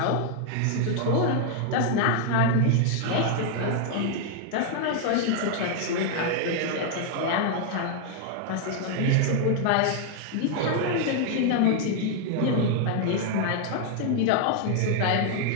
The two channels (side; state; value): both; different; correlation 0.00